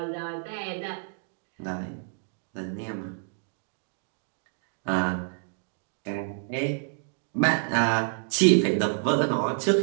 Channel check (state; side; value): silent; left; 59 dB below the other